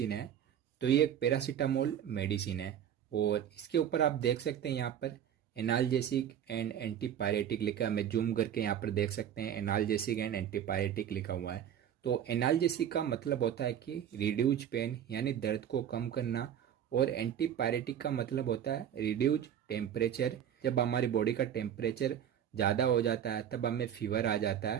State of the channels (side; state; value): left; quieter; 9.6 dB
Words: है, तो ये एक पैरासीटामोल मेडिसिन है और इसके ऊपर आप देख सकते हैं यहाँ पर एनाल्जेसिक एंड एंटीपायरेटिक लिखा है। मैं जूम करके यहाँ पर देख सकते हैं एनाल्जेसिक एंड एंटीपायरेटिक लिखा हुआ है। तो एनाल्जेसिक का मतलब होता है कि रिड्यूज पेन यानी दर्द को कम करना, और एंटीपायरेटिक का मतलब होता है रिड्यूज टेम्परेचर। जब हमारी बॉडी का टेम्परेचर ज़्यादा हो जाता है तब हमें फीवर आ जाता